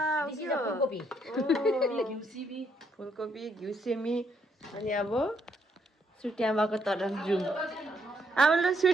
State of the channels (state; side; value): normal; both; correlation 0.73